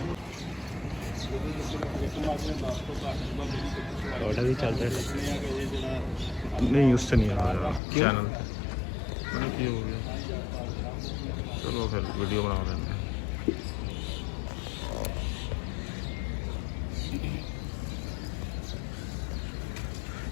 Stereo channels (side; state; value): right; drops out; at 7.8 s